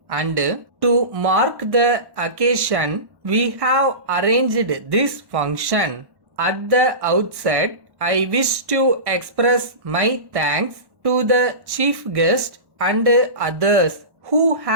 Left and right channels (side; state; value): left; late; 1.1 ms